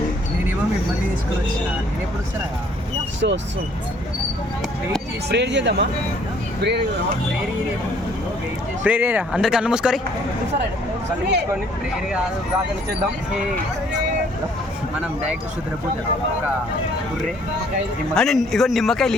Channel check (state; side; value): normal; both; correlation 0.61